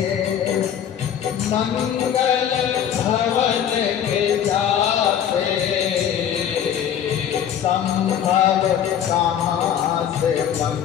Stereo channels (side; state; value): right; quieter; 9.3 dB